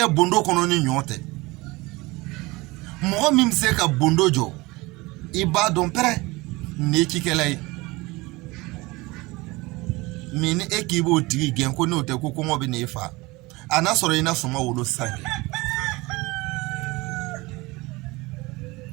bondo kono ni nyote mo mi se ka bondo jo i ba don pere ni kikelai mini ekibo tigi gen ko no te ko ko ngobe ni fa ana soro ina suma wolo sange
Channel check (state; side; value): quieter; left; 22.6 dB